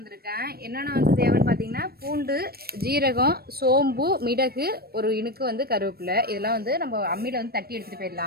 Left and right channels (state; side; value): late; left; 0.45 ms